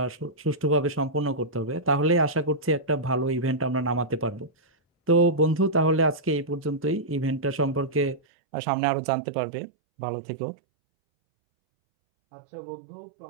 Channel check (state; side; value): drops out; left; at 8.2 s